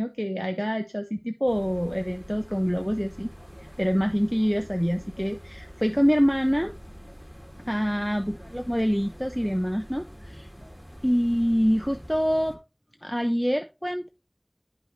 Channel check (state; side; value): identical; both; correlation 1.00